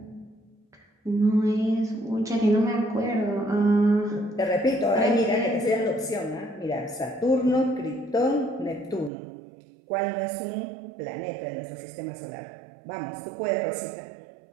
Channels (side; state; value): left; drops out; at 9.1 s